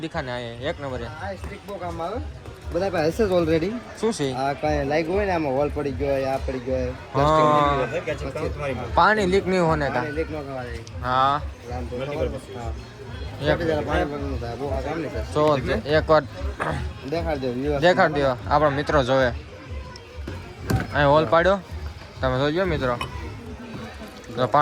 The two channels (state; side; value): identical; both; correlation 1.00